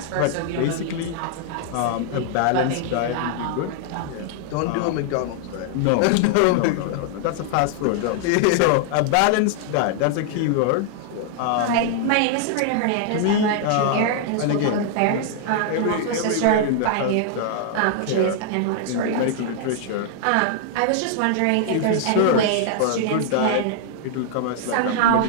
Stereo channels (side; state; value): both; different; correlation -0.01